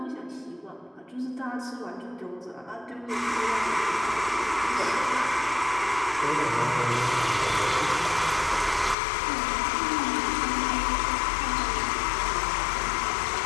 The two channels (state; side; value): drops out; right; at 9.0 s